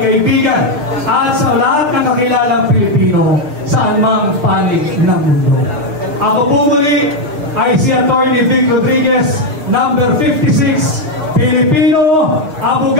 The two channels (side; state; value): left; late; 6.6 ms